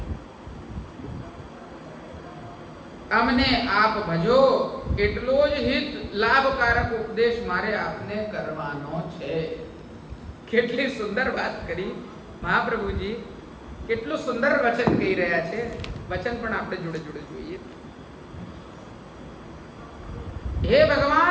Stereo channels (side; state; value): both; identical; correlation 1.00